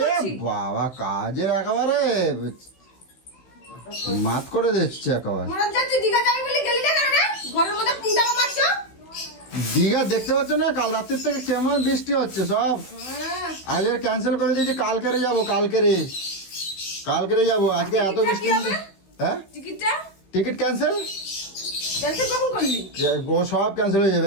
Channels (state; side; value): late; right; 16 ms